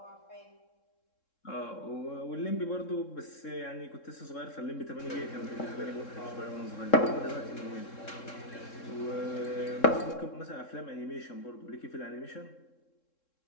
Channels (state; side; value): late; right; 3.7 ms